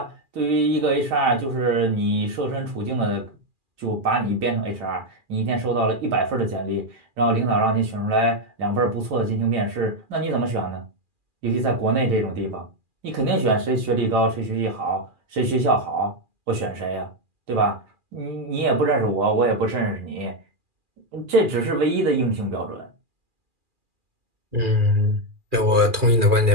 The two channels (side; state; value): left; late; 2.4 ms